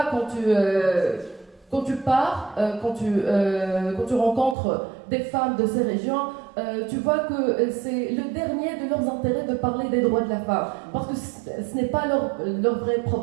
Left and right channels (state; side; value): drops out; left; at 4.5 s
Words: quand tu pars, quand tu rencontres des femmes de ces régions, tu vois que c'est le dernier de leurs intérêts de parler des droits de la femme, parce que ce n'est pas leur vrai